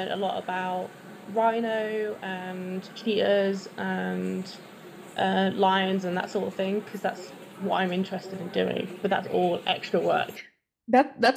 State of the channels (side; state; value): both; identical; correlation 1.00